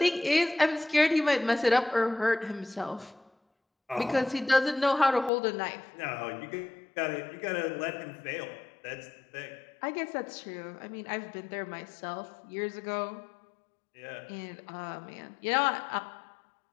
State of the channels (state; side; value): drops out; right; at 5.3 s